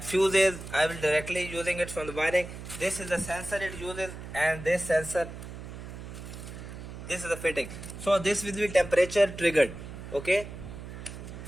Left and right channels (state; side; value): noise; right; hum, 11 dB below the sound